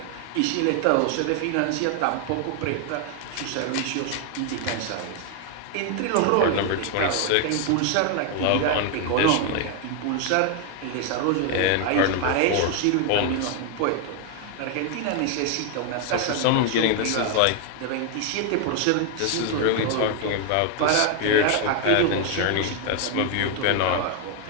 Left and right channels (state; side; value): different; both; correlation 0.01